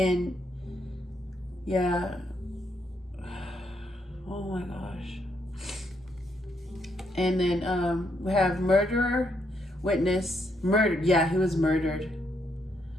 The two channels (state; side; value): normal; both; correlation 0.76